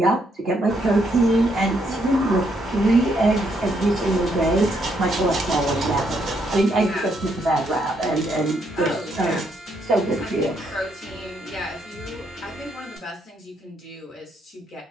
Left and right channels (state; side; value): normal; both; correlation 0.74